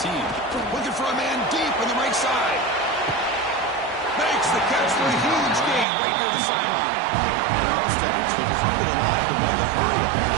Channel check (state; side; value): drops out; left; at 5.9 s